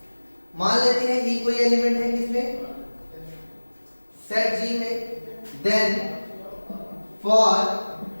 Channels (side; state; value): both; inverted; correlation -1.00